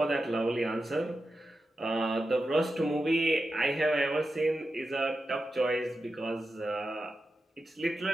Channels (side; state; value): both; normal; correlation 0.90